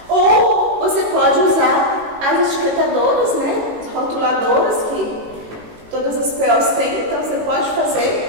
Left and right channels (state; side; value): late; left; 18 ms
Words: Ou você pode usar as etiquetadoras, né, as rotuladoras que todas as POs têm, então você pode